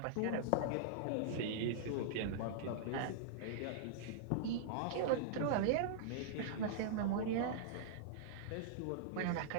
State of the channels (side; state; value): both; different; correlation -0.02